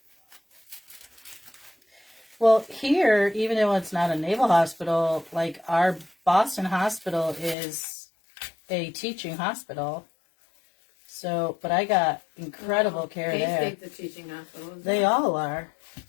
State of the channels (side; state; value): right; drops out; at 7.6 s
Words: Well, here, even though it's not a naval hospital, like our Boston hospital is a teaching hospital. So, but I got incredible care there. K-State's a teaching hospital. They all are.